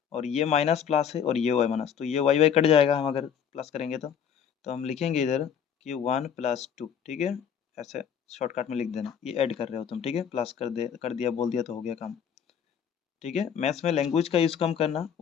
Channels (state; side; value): quieter; right; 8.0 dB